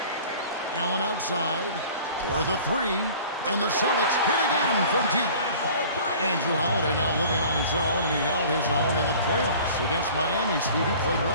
Allen outside for the 3, and the Celtics hit again from deep. Andrew Holiday now living on his own, and he held his own in the playoffs against Miami. Steve, he played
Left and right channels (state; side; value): inverted; both; correlation -0.46